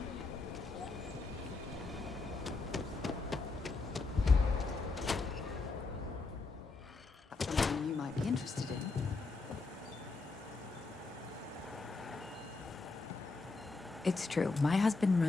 Something you might be interested in. It's true. My husband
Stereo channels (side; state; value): right; quieter; 3.8 dB